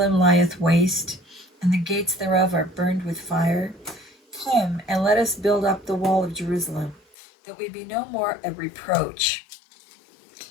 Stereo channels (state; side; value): drops out; right; at 7.2 s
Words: lieth waste, and the gates thereof are burned with fire. Come, and let us build up the wall of Jerusalem, that we be no more a reproach.